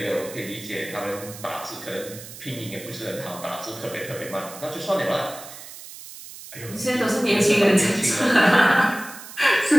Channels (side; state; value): right; noise; hiss, 14 dB below the sound